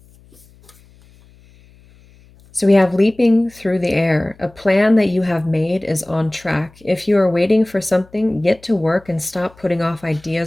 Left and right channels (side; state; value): left; noise; hum, 28 dB below the sound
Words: So we have leaping through the air. A plan that you have made is on track. If you are waiting for something, get to work and stop putting off